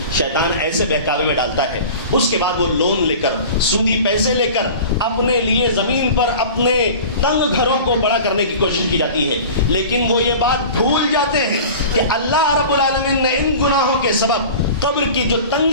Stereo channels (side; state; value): both; inverted; correlation -0.38